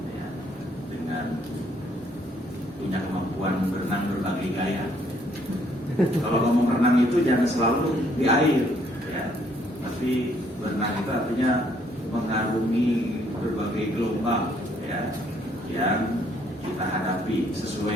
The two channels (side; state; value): both; normal; correlation 0.67